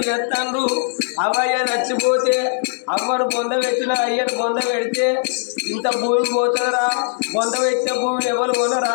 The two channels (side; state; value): right; silent; digital silence